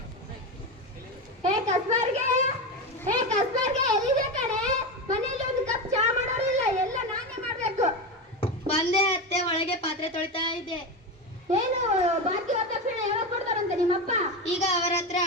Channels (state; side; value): normal; both; correlation 0.18